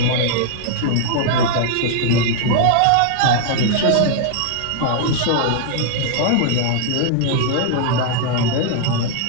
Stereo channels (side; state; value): both; different; correlation -0.01